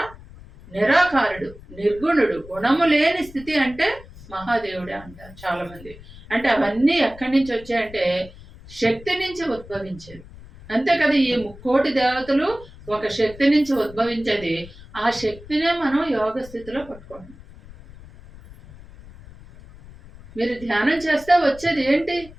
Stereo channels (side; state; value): left; noise; rumble, 19 dB below the sound